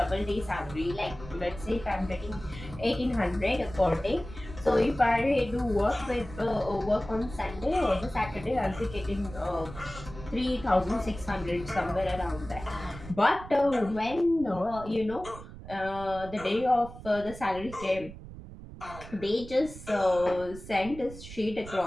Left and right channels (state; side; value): noise; right; rumble, 14 dB below the sound